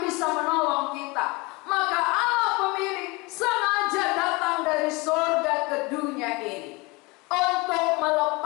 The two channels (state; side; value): quieter; right; 25.5 dB